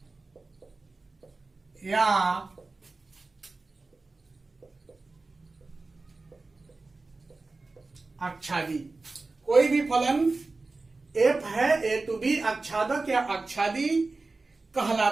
या आच्छादी। कोई भी फलन एफ है, ए टू बी आच्छादक या आच्छादी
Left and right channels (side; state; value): left; quieter; 3.6 dB